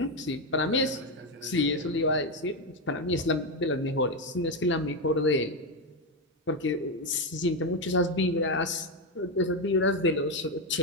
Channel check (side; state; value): both; normal; correlation 0.09